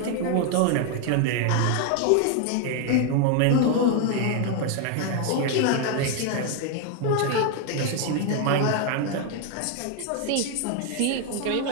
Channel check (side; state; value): both; different; correlation 0.01